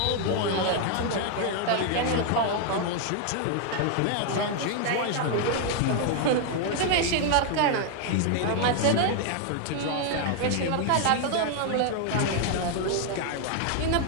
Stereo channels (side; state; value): both; different; correlation 0.00